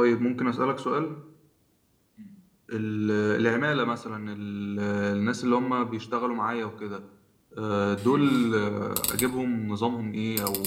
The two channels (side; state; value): both; identical; correlation 1.00